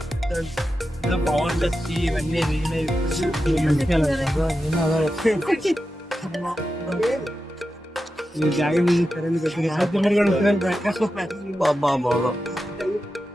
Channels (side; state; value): both; normal; correlation 0.91